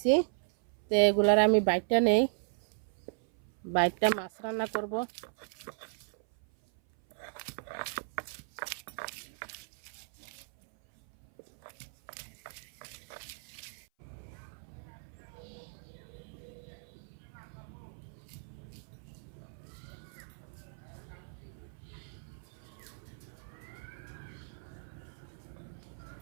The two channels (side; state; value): left; silent; 54 dB below the other